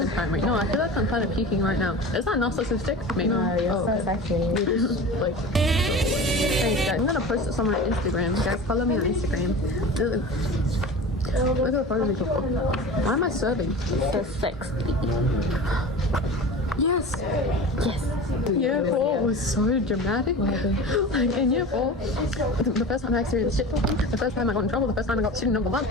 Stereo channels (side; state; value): both; normal; correlation 0.34